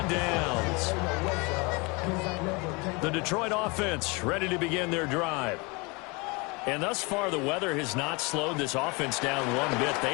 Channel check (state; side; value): quieter; right; 28.1 dB